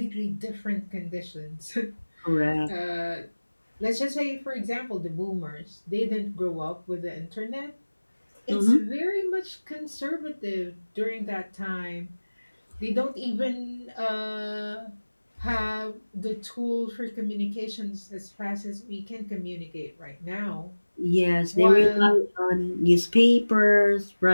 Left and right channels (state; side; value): inverted; both; correlation -1.00